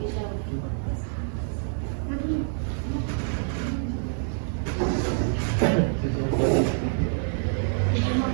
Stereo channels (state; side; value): silent; left; digital silence